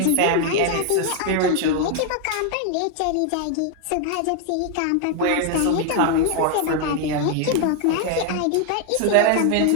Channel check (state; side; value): different; both; correlation 0.00